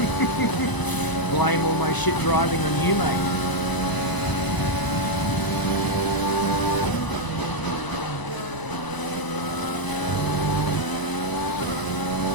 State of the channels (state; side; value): late; right; 1.0 ms